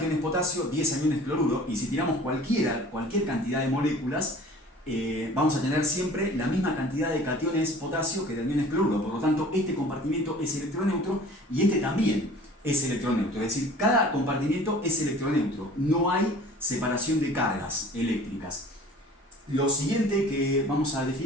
potasio, 10 aniones cloruro, y si tiramos cualquier cantidad de moléculas, vamos a tener siempre la misma cantidad de cationes potasio que de aniones cloruro. Por lo tanto, este compartimiento es electroneutro y este también es electroneutro. Es decir, cada compartimiento es electroneutro. No hay separación de cargas eléctricas. Lo siguiente que vamos a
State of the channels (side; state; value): both; normal; correlation 0.47